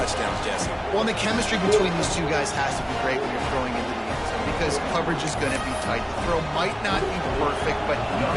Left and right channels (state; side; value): identical; both; correlation 1.00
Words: Jesse. Well, and the chemistry between these two guys has to be great when you're throwing into the end zone because coverage is going to be tight. The throw might not be perfect, but